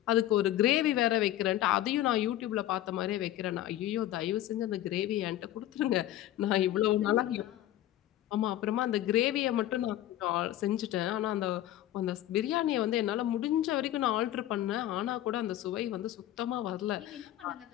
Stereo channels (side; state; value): right; quieter; 13.6 dB